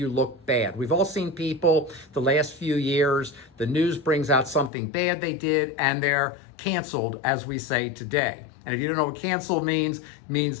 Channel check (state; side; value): drops out; right; at 4.7 s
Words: look bad. We've all seen people the last few years, the news brings out something bad they did and they're canceled, as we say today. And if you don't know what canceled means, it